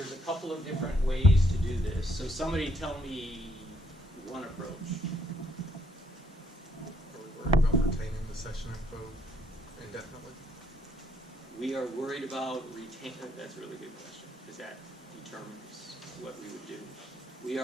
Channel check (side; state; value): both; normal; correlation 0.70